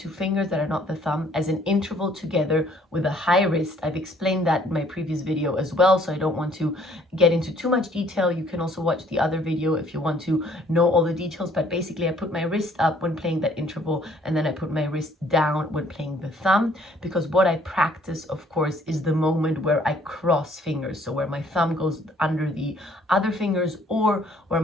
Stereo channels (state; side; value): normal; both; correlation 0.61